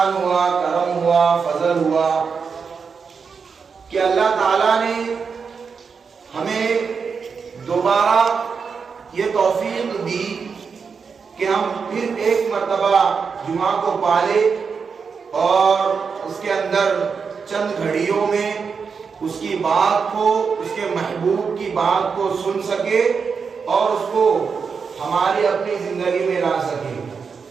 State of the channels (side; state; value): left; quieter; 5.7 dB